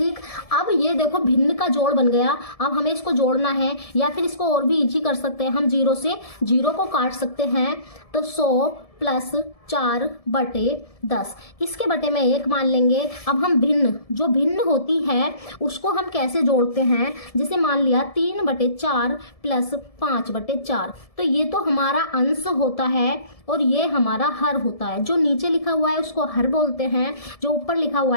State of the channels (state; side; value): late; right; 1.7 ms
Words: अब ये देखो भिन्न का जोड़ बन गया। अब हमें इसको जोड़ना है, या फिर इसको और भी इजी कर सकते हैं, हम जीरो से जीरो को काट सकते हैं। तो 100 प्लस 4 बटे 10, इसके बटे में 1 मान लेंगे। अब हम भिन्न, जो भिन्न होती है उसको हम कैसे जोड़ते हैं, जैसे मान लिया 3 बटे 4 प्लस 5 बटे 4। तो ये तो हमारा अंश होता है और ये हमारा हर होता है। जो नीचे लिखा हुआ है उसको हर बोलते हैं, जो ऊपर लिखा हुआ